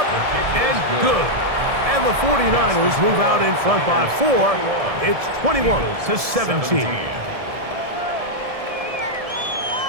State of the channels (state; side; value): late; left; 1.7 ms